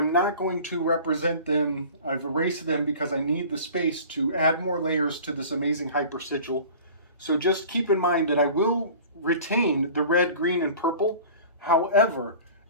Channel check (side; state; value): both; inverted; correlation -0.42